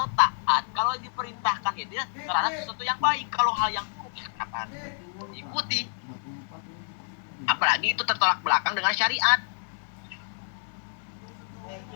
taat, kalau diperintahkan ya dia terhadap sesuatu yang baik. Kalau hal yang buruk ya kenapa ikuti? Apalagi itu tertolak belakang dengan syariat.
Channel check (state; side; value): silent; right; digital silence